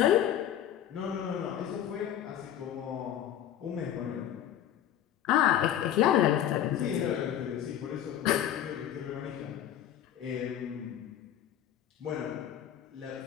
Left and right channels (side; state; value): right; quieter; 10.9 dB